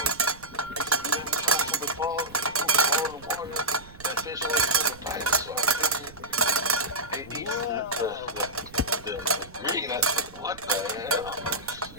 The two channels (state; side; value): noise; right; rumble, 19 dB below the sound